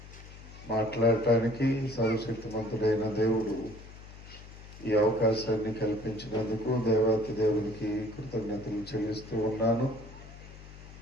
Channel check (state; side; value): noise; left; hum, 17 dB below the sound